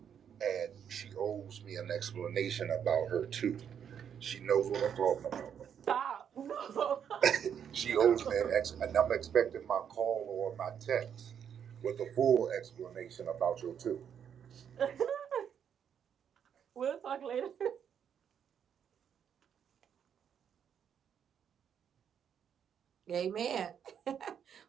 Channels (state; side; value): quieter; left; 8.3 dB